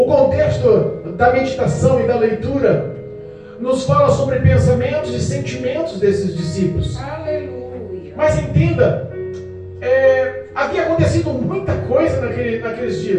contexto da meditação e da leitura nos fala sobre pensamentos e sentimentos desses discípulos. Aleluia. Mas entenda, havia acontecido muita coisa naqueles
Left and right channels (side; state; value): both; identical; correlation 1.00